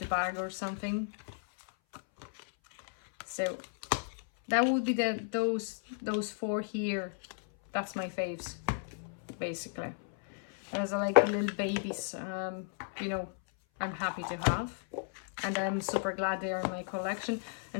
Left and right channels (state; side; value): silent; right; 55 dB below the other